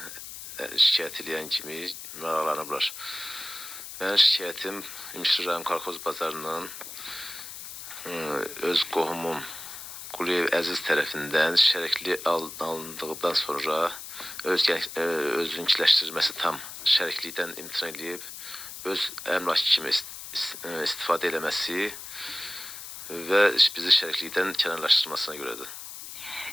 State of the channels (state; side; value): noise; left; hiss, 11 dB below the sound